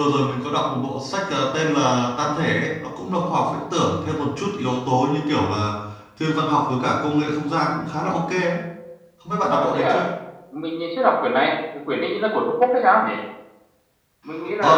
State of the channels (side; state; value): both; identical; correlation 1.00